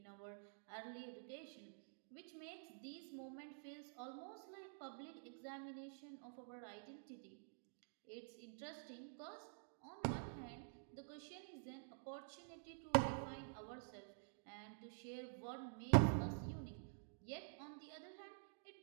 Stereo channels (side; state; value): left; silent; digital silence